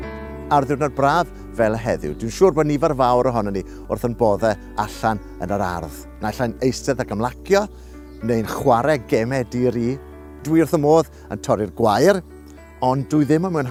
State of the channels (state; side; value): identical; both; correlation 1.00